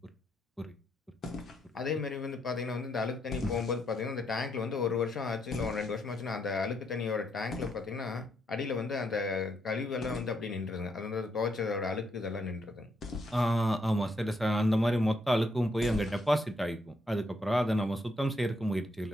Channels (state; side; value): normal; both; correlation 0.76